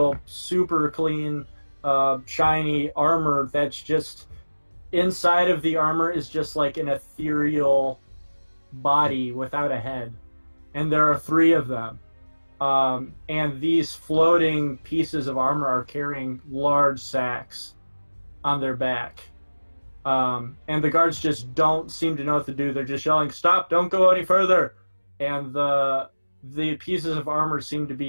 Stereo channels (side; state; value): both; inverted; correlation -1.00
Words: super clean, shiny armor. That's just inside of the armor is just like an ethereal body without a head, and there are 3 of them. And these floating pieces of armor are carrying large sacks on their back. And the guards just don't seem to know what to do. They're just yelling, "Stop! Don't go any further!" And the pieces of armor seem to